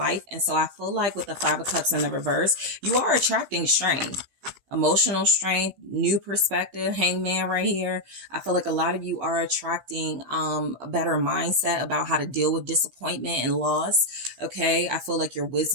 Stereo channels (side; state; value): left; late; 15 ms